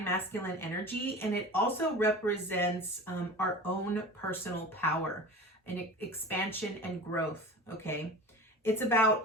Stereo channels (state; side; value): normal; both; correlation 0.35